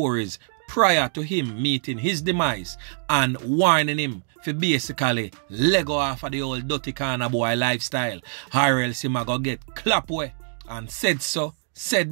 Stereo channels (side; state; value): left; silent; digital silence